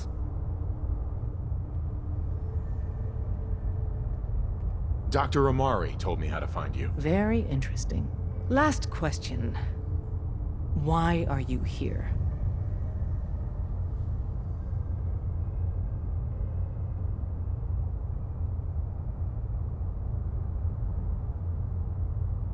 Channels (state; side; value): identical; both; correlation 1.00